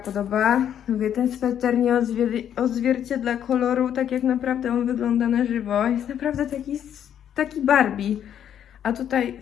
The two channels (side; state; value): right; quieter; 9.6 dB